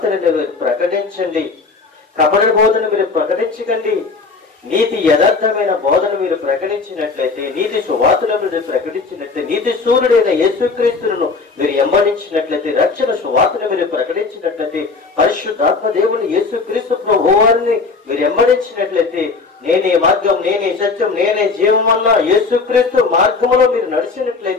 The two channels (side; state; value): right; quieter; 4.3 dB